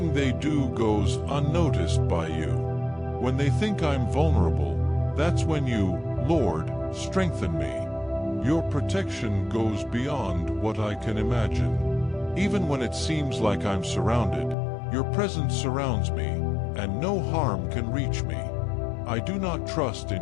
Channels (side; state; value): right; drops out; at 14.6 s